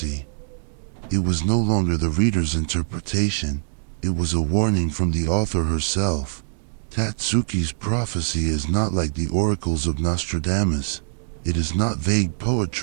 It was no longer the reader's interpretation, it was a warning from the author herself. Tatsuki's prophecy is not like the oracles of Nostradamus. It is not vague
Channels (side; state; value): left; silent; digital silence